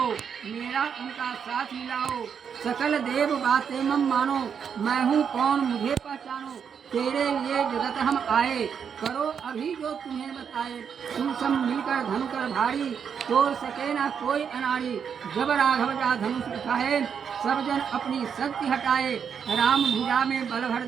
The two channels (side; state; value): left; quieter; 7.2 dB